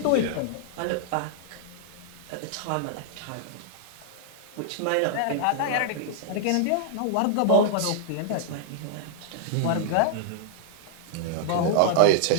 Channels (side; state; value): both; different; correlation -0.01